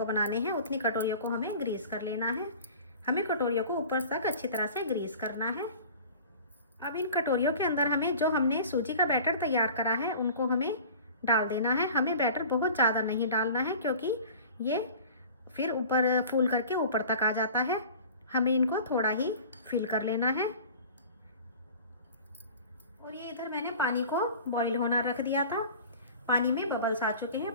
बनाने हैं उतनी कटोरियों को हमें ग्रीस कर लेना है। हमें कटोरियों को ऊपर तक अच्छी तरह से ग्रीस करना है। अब इन कटोरियों के अंदर हमें जो हमने सूजी का बैटर तैयार करा है उनको हमें डाल देना है। हमें बैटर बहुत ज़्यादा नहीं डालना है, क्योंकि ये फिर ऊपर फूल करके ऊपर तक आ जाता है। हमें इनको थोड़ा ही फिल कर लेना है। और ये इधर मैंने पानी को बॉईल होना रख दिया था। पानी में बबल्स आ चुके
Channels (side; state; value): both; inverted; correlation -0.41